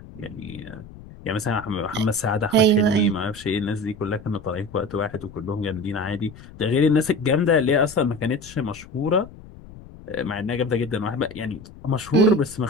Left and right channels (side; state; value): left; noise; rumble, 18 dB below the sound